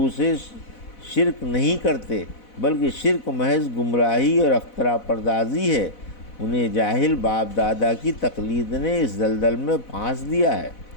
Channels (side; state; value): right; late; 4.1 ms